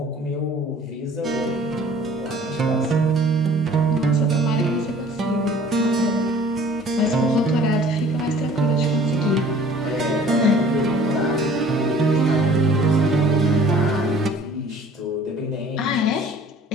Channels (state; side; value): normal; both; correlation 0.51